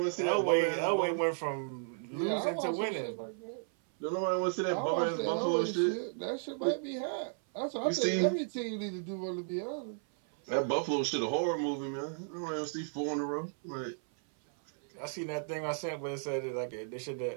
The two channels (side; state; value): left; silent; 55 dB below the other